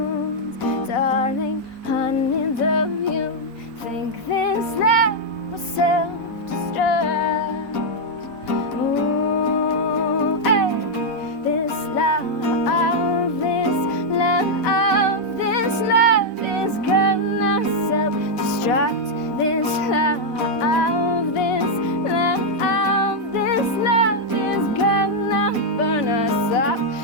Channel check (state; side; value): normal; both; correlation -0.01